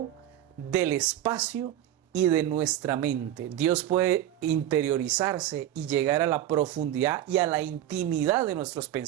del espacio y de nuestra mente. Dios puede interiorizarse y llegar a la profundidad y a la intimidad de nuestros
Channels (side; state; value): left; quieter; 12.3 dB